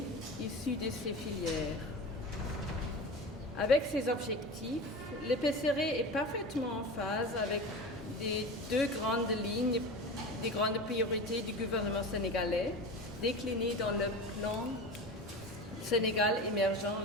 issus de ces filières. Avec ces objectifs, le PCRE est parfaitement en phase avec les 2 grandes lignes, des grandes priorités du gouvernement sénégalais, déclinées dans le plan Sénégal émergent,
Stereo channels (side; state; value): both; normal; correlation 0.30